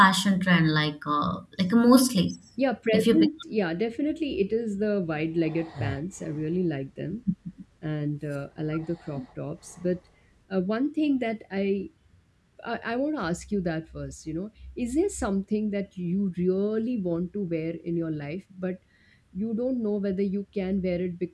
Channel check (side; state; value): both; identical; correlation 1.00